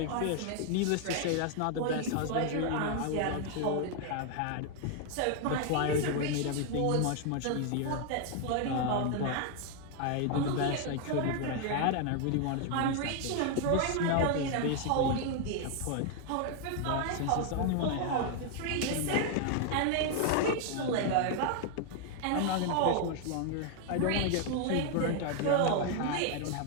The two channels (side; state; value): both; different; correlation 0.00